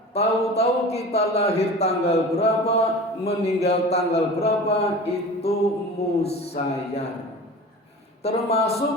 Tahu-tahu kita lahir tanggal berapa, meninggal tanggal berapa, itu musayyar.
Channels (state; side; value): normal; both; correlation 0.36